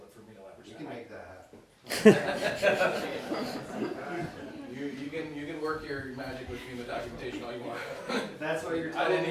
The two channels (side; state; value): both; identical; correlation 1.00